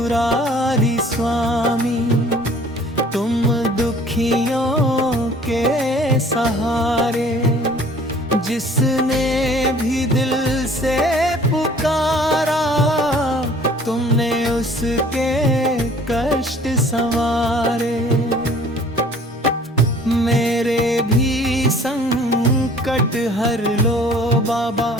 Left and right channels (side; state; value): both; normal; correlation 0.52